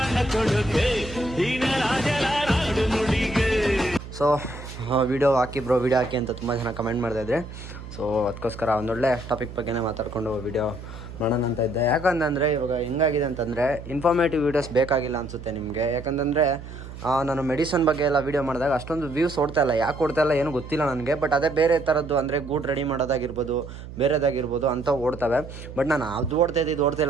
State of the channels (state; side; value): noise; right; hum, 13 dB below the sound